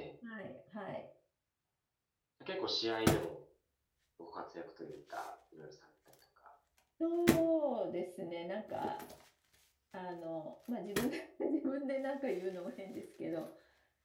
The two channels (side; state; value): both; identical; correlation 1.00